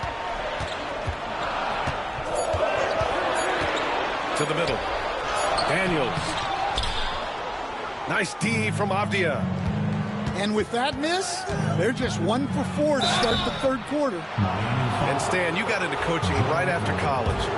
To the middle. Daniels. Nice D from Avdia. And with that miss, they're just 1 for 4 to start the 3rd quarter. And Stan, you got into coaching right after college.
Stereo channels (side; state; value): both; identical; correlation 1.00